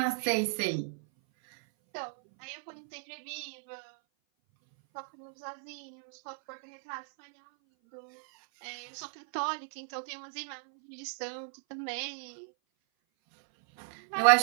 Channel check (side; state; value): left; silent; 55 dB below the other